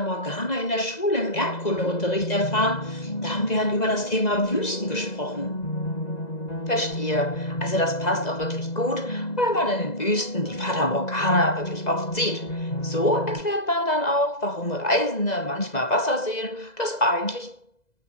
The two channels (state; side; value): late; right; 2.0 ms